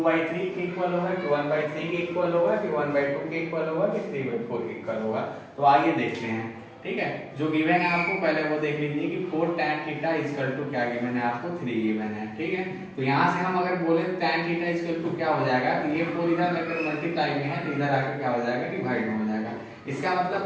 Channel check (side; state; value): both; identical; correlation 1.00